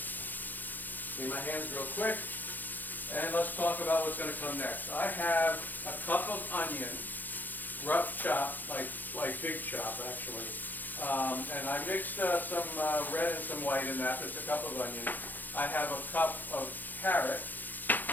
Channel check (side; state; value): right; late; 0.086 ms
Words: Clean my hands real quick. And let's talk about what's going to come next. I have a cup of onion, rough chop, like big chop actually. And I mixed some red and some white in that. It's a cup of onion. I have a cup of carrot.